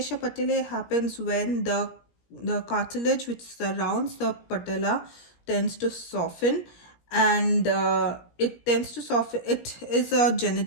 patellae happens when the cartilage which surrounds the patella tends to soften, and it tends to soften. It is a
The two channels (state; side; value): late; right; 17 ms